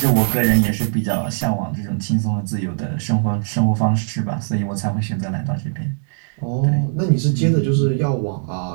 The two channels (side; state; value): left; silent; 66 dB below the other